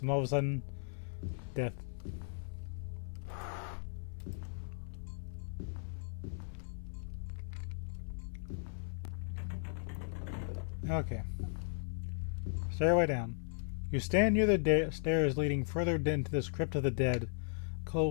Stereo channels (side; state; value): right; silent; 53 dB below the other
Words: all of a sudden, death. Okay. Stairway down. You stand near the stairs leading further into this crypt of the dead.